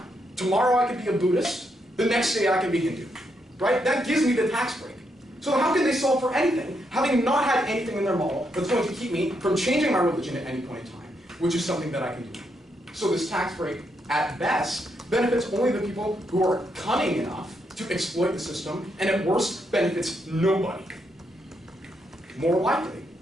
Tomorrow I could be a Buddhist, the next day I can be Hindu, right? That gives me the tax break. So how can they solve for anything, having not had anything in their model that's going to keep me from changing my religion at any point in time, which is something that I can do. So this tax break, at best, benefits only the people who are cunning enough to exploit the system, and at worst, benefits nobody. More likely,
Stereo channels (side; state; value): both; normal; correlation 0.79